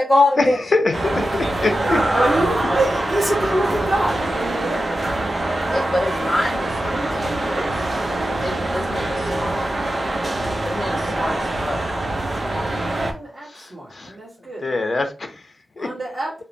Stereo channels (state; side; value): normal; both; correlation 0.91